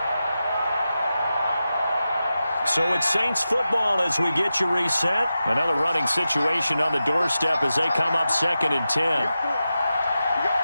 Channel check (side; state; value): both; inverted; correlation -0.92